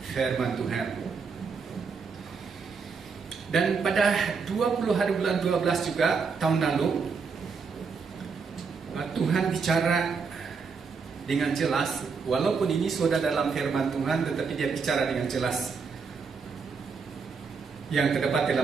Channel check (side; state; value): left; quieter; 5.3 dB